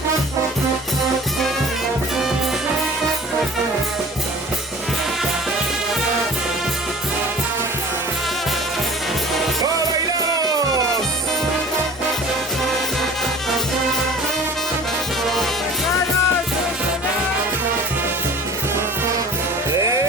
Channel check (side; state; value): both; normal; correlation 0.44